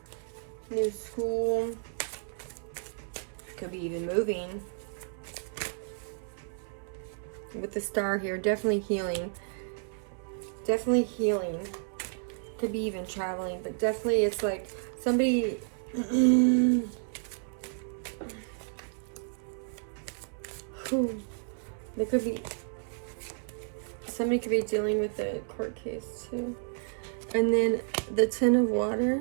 new school, could be even moving. With the star here, definitely healing. Definitely healing. Could be even traveling, but definitely it's like somebody there could be somebody could be dealing with a court case too. And then the Ten of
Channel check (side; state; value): left; silent; 57 dB below the other